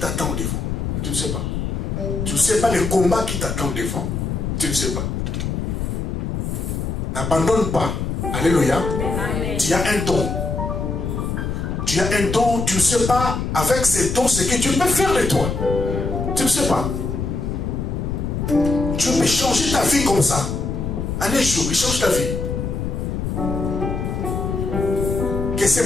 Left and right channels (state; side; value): noise; left; rumble, 2 dB below the sound